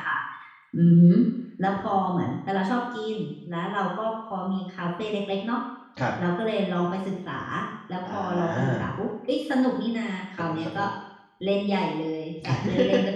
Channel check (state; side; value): identical; both; correlation 1.00